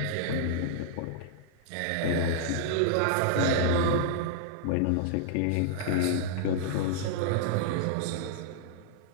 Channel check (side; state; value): both; different; correlation -0.01